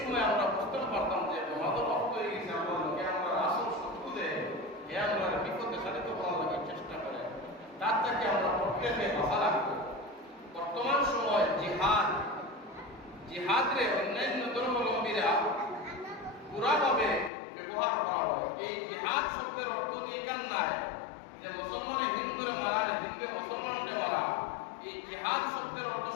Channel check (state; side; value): drops out; right; at 17.3 s